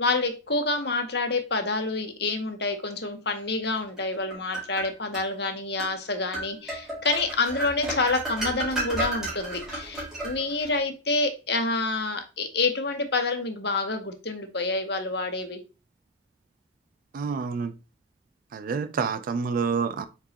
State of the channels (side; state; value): both; normal; correlation -0.08